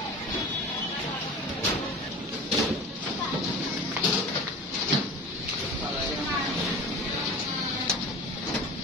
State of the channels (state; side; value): normal; both; correlation 0.35